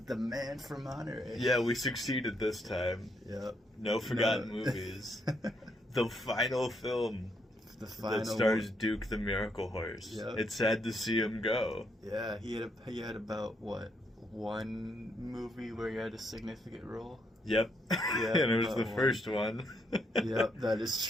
Man from Monterey. Yeah, we succeeded this time. Yep. No forgotten movies. The final film that stars Duke the Miracle Horse. Yep. It's sad to see him go. Yeah, he had about what, one movie where he had a significant role. Yep. Yeah, And it was the first one. Yep, that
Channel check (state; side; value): normal; both; correlation 0.75